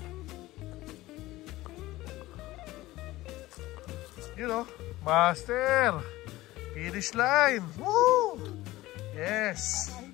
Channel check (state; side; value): quieter; right; 17.7 dB